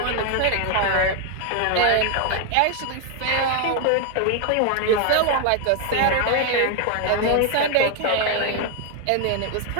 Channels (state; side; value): different; both; correlation 0.00